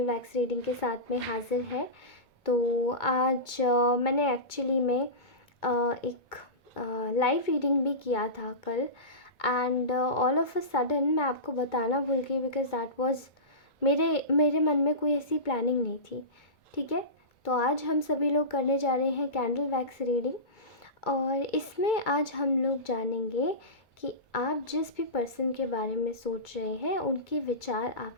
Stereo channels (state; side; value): late; right; 2.2 ms